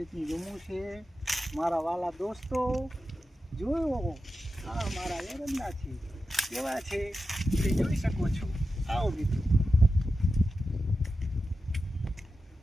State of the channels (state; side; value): normal; both; correlation 0.91